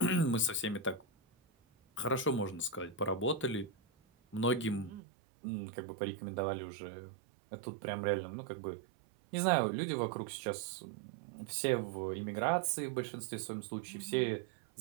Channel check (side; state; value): left; drops out; at 5.0 s